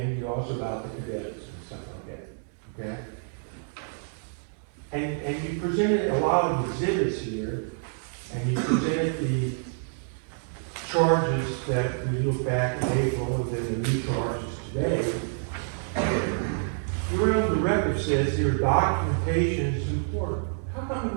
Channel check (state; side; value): silent; left; digital silence